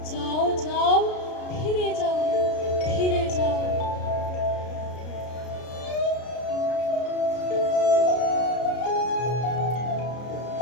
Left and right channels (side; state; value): right; late; 33 ms